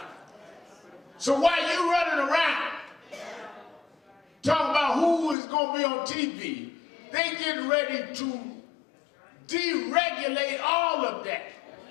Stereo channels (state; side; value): drops out; right; at 5.4 s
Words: So while you running around talking about who is going to be on TV, they getting ready to deregulate all of that.